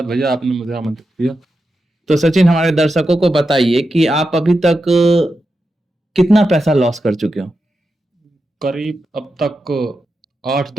भैया, आपने मुझे आमंत्रित किया। तो सचिन हमारे दर्शकों को बताइए कि आप अभी तक कितना पैसा लॉस कर चुके हो। करीब अब तक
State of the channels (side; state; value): both; normal; correlation 0.89